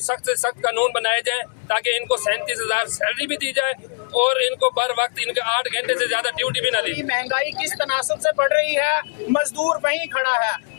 से सख्त कानून बनाए जाए ताकि इनको 37,000 सैलरी भी दी जाए और इनको बर वक्त इनके 8 घंटे से ज्यादा ड्यूटी भी ना दी। महंगाई किस तनासब से बढ़ रही है, मजदूर वहीं खड़ा है,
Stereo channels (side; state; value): right; silent; 64 dB below the other